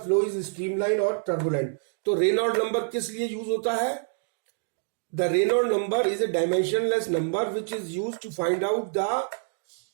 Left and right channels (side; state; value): left; silent; digital silence